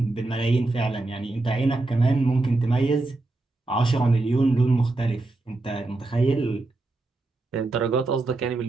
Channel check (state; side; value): quieter; left; 3.0 dB